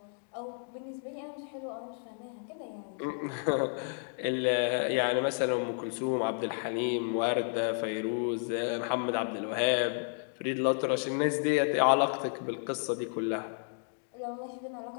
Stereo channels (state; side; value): silent; right; 56 dB below the other